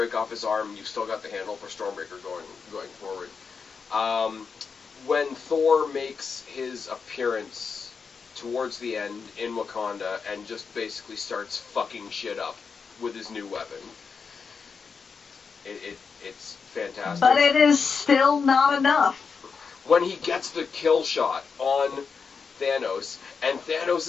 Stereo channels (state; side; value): quieter; right; 5.5 dB